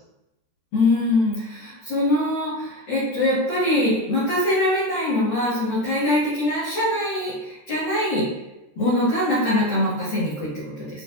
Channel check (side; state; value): right; late; 13 ms